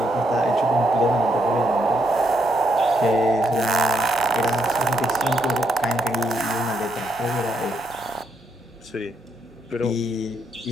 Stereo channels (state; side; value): normal; both; correlation 0.77